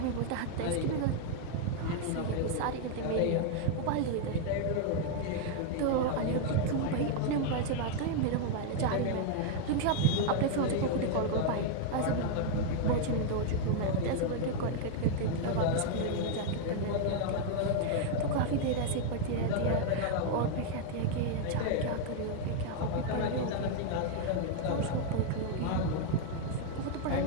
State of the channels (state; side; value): different; both; correlation 0.00